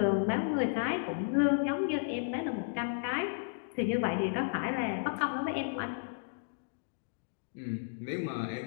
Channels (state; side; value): silent; right; digital silence